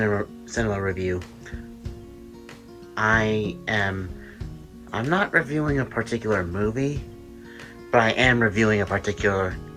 cinema review, I'm not reviewing a particular movie, but I am reviewing a particular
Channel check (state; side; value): identical; both; correlation 1.00